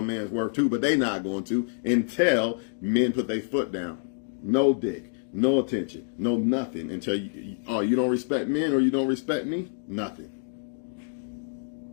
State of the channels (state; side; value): silent; right; digital silence